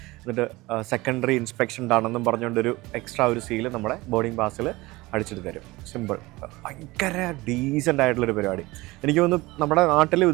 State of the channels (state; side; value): quieter; left; 20.9 dB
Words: എന്നിട്ട് സെക്കൻഡറി ഇൻസ്പെക്ഷൻഡ് ആണെന്നും പറഞ്ഞുകൊണ്ടൊരു എക്സ്ട്രാ ഒരു സീല് നമ്മുടെ ബോർഡിംഗ് പാസിൽ അടിച്ചിട്ട് തരും. സിമ്പിൾ, ഭയങ്കര ഡീസൻ്റ് ആയിട്ടുള്ളൊരു പരിപാടി. എനിക്ക് തോന്നുന്നു നമ്മുടെ നാട്ടിലും